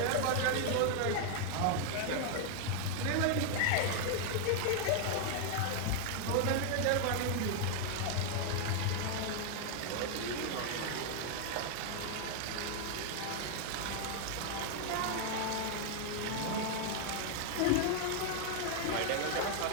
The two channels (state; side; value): different; both; correlation 0.00